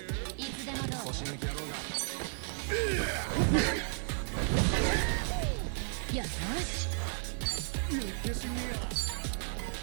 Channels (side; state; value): left; silent; 55 dB below the other